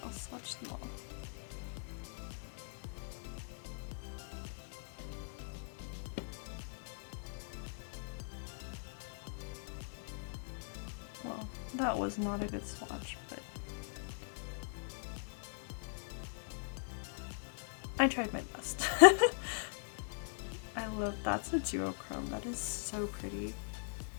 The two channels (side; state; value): right; silent; digital silence